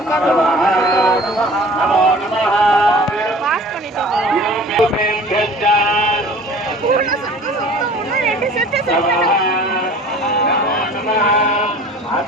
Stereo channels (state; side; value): normal; both; correlation 0.45